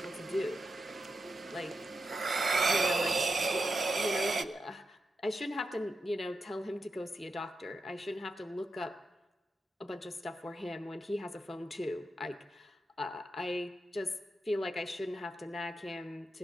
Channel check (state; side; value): normal; both; correlation 0.88